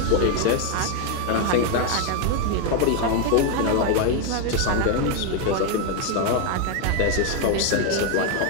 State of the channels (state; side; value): different; both; correlation 0.01